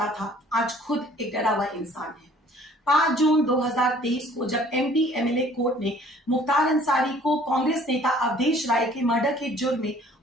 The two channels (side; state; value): both; normal; correlation 0.55